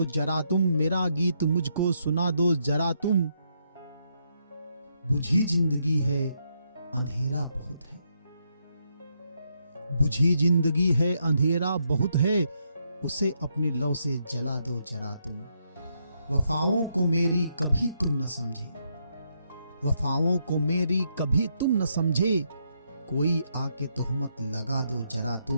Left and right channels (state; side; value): inverted; both; correlation -0.77